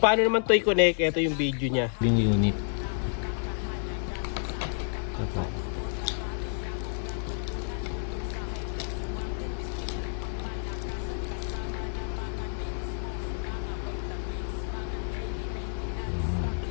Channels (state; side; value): silent; right; digital silence